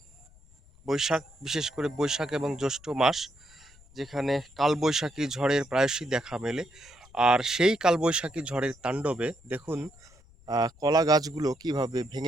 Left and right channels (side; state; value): left; noise; rumble, 26 dB below the sound